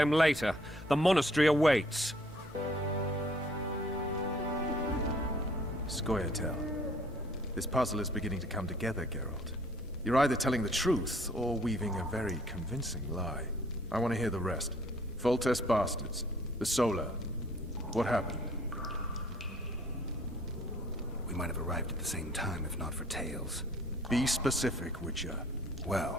later. The monastery awaits. Scoia'tael. This puzzle is beginning to come together, Geralt. You're either telling the truth or weaving a very convincing lie. I want to hear the rest. Foltest bastards. The Solar. What happened? We might have arrived at the same time if not for Tales. Be specific, Witcher.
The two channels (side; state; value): both; normal; correlation 0.59